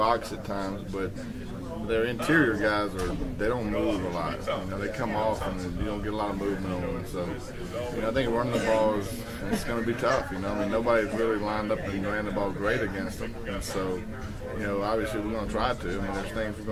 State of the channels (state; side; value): identical; both; correlation 1.00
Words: at times, but their interior guys they don't move a lot. They come off and you don't get a lot of movement on them. So, I think running the ball it's going to be tough. I mean, nobody's really lined up and ran the ball great against them. And so, obviously we're going to try to. I mean, there's things we're